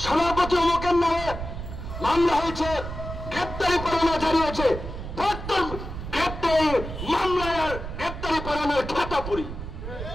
সভাপতি অমুকের নামে মামলা হয়েছে, গ্রেপ্তারি পরোয়ানা জারি হয়েছে। গ্রেপ্তারি মামলায় আর গ্রেপ্তারি পরোয়ানার খাতা পুরি,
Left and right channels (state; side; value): noise; right; rumble, 8 dB below the sound